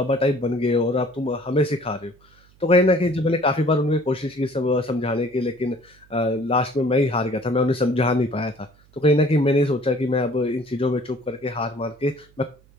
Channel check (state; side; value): noise; right; hum, 30 dB below the sound